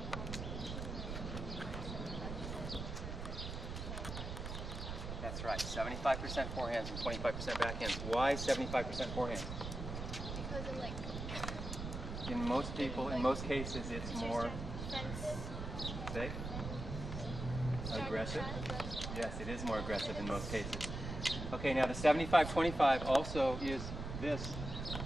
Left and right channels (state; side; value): noise; right; rumble, 6 dB below the sound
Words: That's right. 75% forehands and 25% backhands. Why 75% forehands? Because of in most people, in most cases, it's more safe, aggressive. Yes, it is more aggressive in most cases. Okay, now the 75-25 also is this.